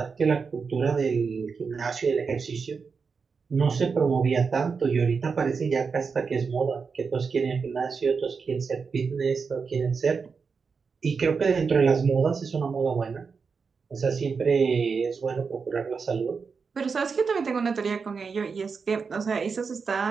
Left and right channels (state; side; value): quieter; left; 5.3 dB